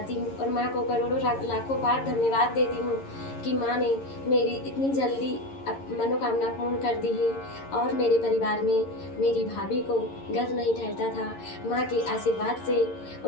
हूँ और माँ को करोड़ों लाखों बार धन्यवाद देती हूँ कि माँ ने मेरी इतनी जल्दी मनोकामना पूर्ण कर दी है। और मेरे परिवार में मेरी भाभी को गर्भ नहीं ठहरता था, माँ के आशीर्वाद से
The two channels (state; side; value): late; right; 11 ms